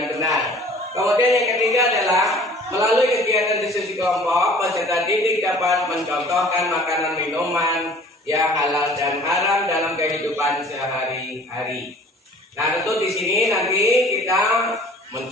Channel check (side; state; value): both; normal; correlation 0.49